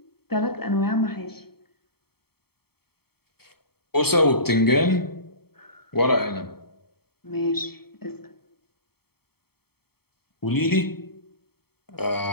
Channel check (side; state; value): right; late; 0.96 ms